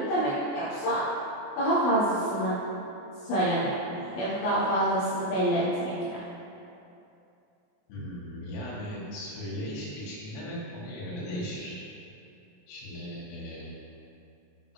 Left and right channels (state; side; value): late; right; 28 ms